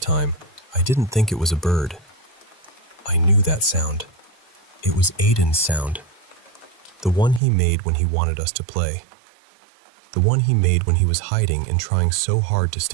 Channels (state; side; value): drops out; left; at 7.4 s